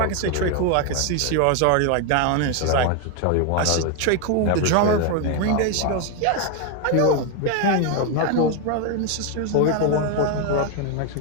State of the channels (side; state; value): both; different; correlation 0.01